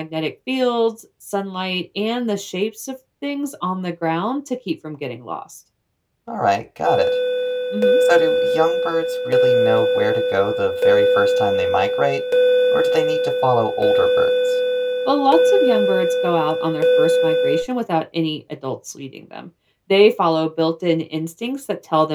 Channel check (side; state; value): both; identical; correlation 1.00